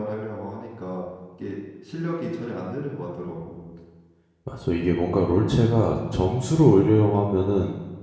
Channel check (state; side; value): identical; both; correlation 1.00